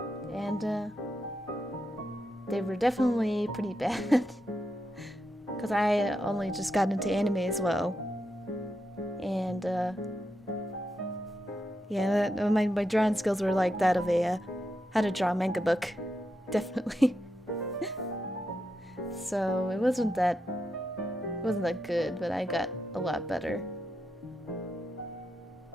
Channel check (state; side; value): normal; both; correlation 0.85